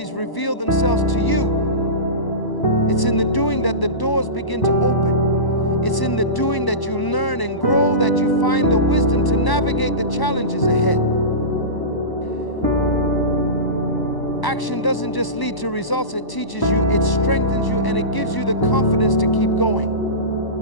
reveal themselves to you. It's in the doing that the doors begin to open. It's in the doing that you learn and grow, that you find the wisdom to navigate the challenges ahead. Action doesn't just lead to results, it teaches you, it strengthens you, and it gives you the confidence to keep going.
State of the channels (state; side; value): late; right; 1.0 ms